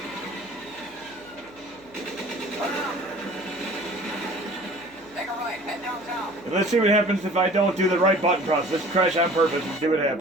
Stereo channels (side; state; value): left; noise; hum, 26 dB below the sound